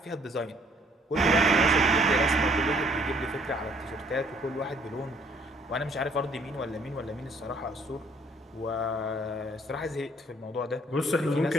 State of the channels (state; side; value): normal; both; correlation 0.62